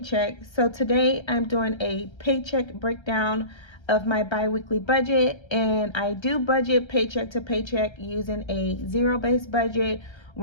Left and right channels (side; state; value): right; late; 1.3 ms